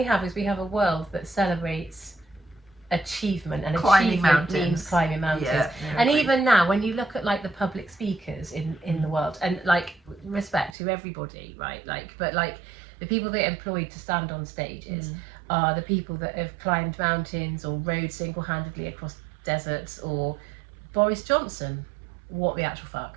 have is we have a world that celebrates achievement, and climbing achievement mountains. Means climbing mountains. Yeah, and even now, when you look at like the public speakers in the world, and like respect to everybody, right? Like, but like the people that are employed to stand on stages are the people that have climbed mountains or rode single-handedly across deserts, or Boris Johnson. What the actual fuck?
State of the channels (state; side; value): drops out; left; at 10.8 s